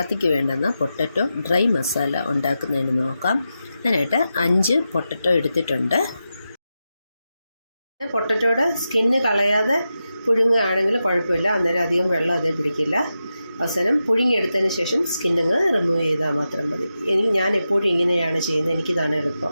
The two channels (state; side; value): inverted; both; correlation -0.90